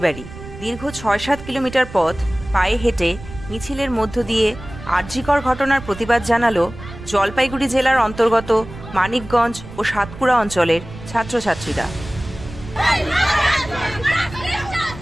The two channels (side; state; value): right; noise; rumble, 14 dB below the sound